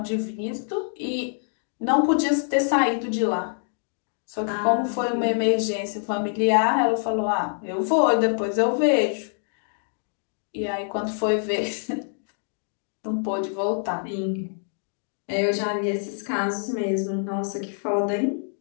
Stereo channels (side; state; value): right; silent; 61 dB below the other